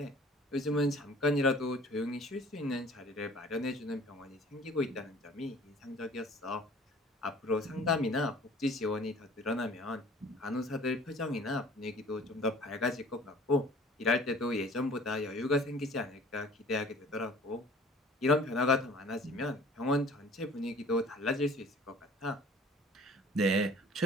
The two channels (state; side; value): normal; both; correlation 0.49